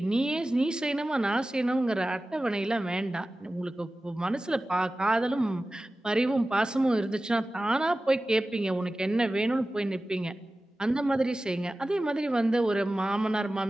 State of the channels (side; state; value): both; normal; correlation 0.95